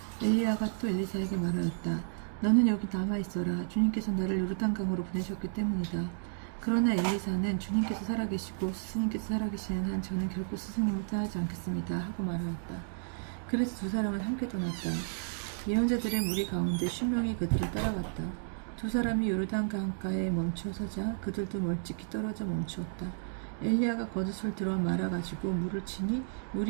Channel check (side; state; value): left; silent; digital silence